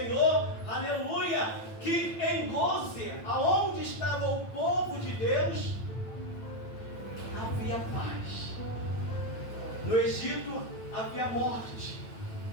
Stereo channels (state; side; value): late; right; 9.0 ms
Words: aleluia, que em Goze, aonde estava o povo de Deus, havia paz. No Egito havia morte,